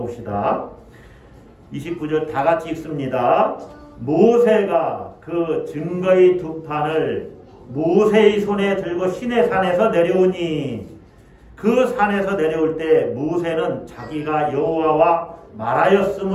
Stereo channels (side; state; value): both; identical; correlation 1.00